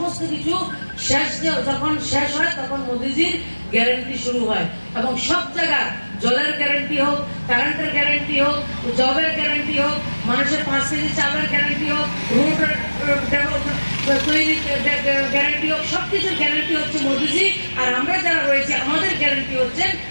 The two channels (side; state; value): both; inverted; correlation -1.00